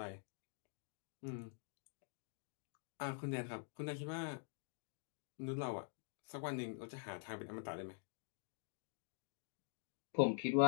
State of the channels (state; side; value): silent; right; digital silence